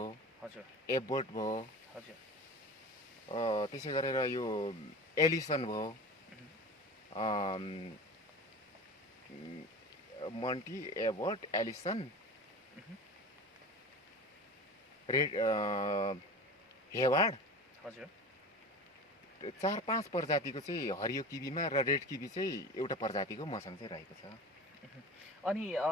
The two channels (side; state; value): both; normal; correlation 0.33